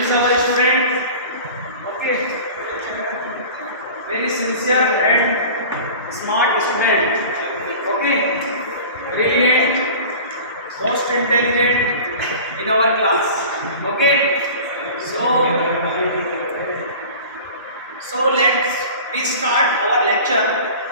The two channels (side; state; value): both; inverted; correlation -0.39